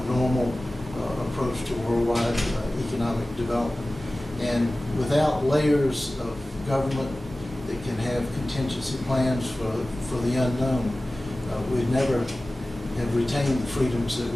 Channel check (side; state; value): both; normal; correlation 0.97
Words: normal approach to worldwide economic development. And without layers of government that can have contingency plans for the unknown, we'd never have retained the freedoms that